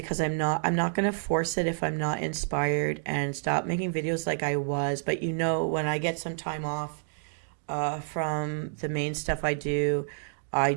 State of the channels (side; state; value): left; silent; digital silence